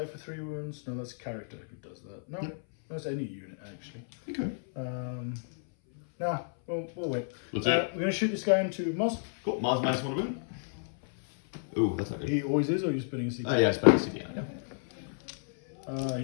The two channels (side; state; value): right; silent; 57 dB below the other